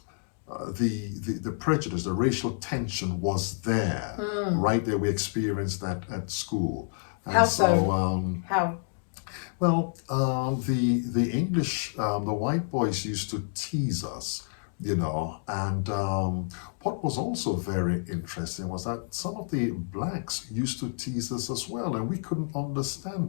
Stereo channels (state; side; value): silent; right; digital silence